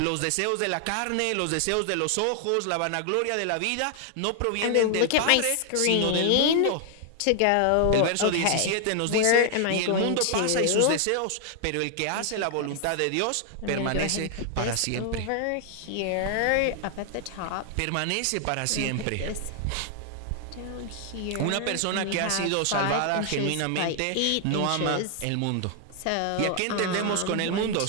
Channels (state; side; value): different; both; correlation 0.00